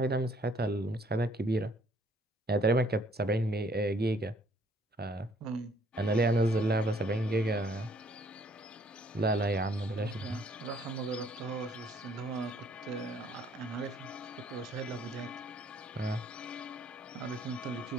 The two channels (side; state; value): both; normal; correlation 0.63